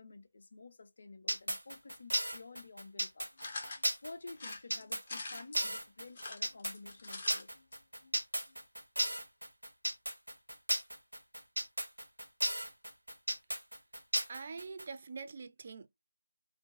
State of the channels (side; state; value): both; inverted; correlation -0.97